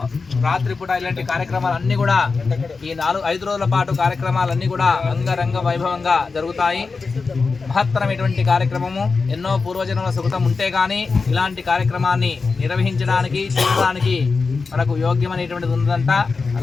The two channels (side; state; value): right; quieter; 4.5 dB